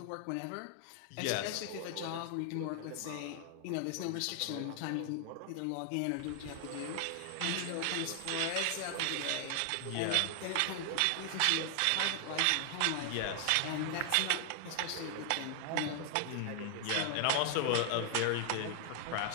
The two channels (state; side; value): different; both; correlation 0.00